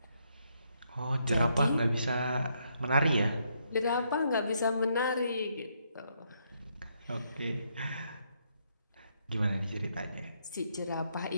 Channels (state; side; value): inverted; both; correlation -0.75